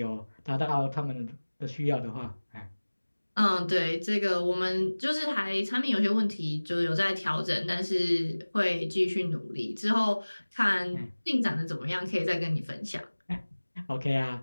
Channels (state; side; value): inverted; both; correlation -1.00